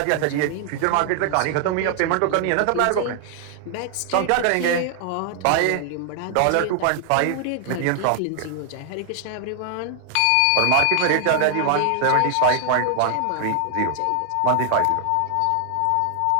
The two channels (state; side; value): different; both; correlation 0.00